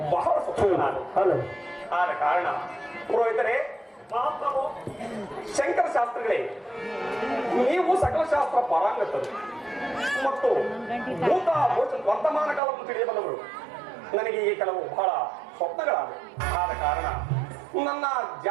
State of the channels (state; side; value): drops out; left; at 12.6 s